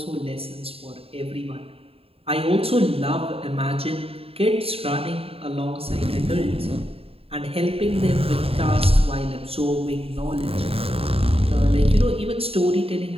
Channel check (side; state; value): left; late; 0.28 ms